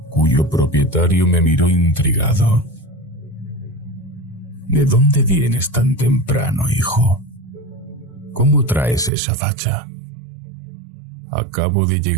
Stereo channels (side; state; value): left; drops out; at 9.1 s